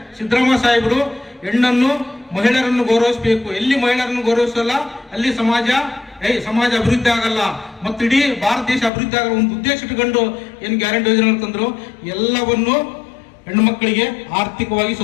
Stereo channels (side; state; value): right; drops out; at 8.9 s